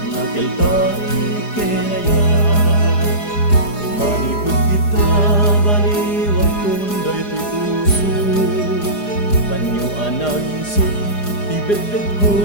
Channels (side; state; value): right; late; 4.9 ms